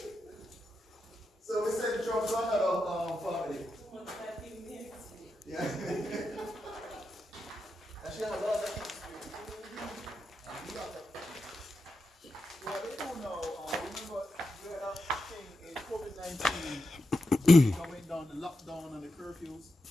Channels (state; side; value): normal; both; correlation 0.88